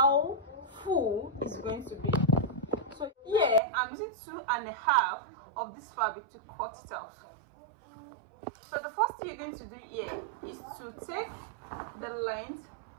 full it's going to be. So here I'm using 2.5 of this fabric to cut it out. So the first thing you're going to do here is to take the length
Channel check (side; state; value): left; drops out; at 3.6 s